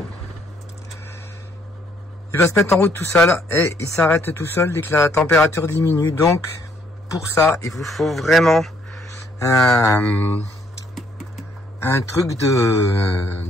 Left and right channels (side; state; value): both; normal; correlation 0.67